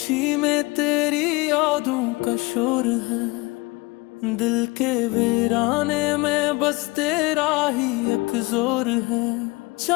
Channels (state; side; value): quieter; right; 24.2 dB